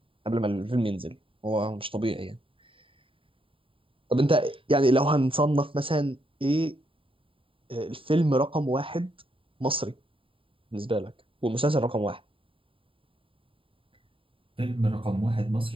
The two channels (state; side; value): late; left; 0.25 ms